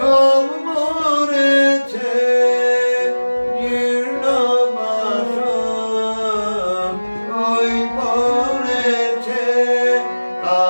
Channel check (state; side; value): inverted; both; correlation -1.00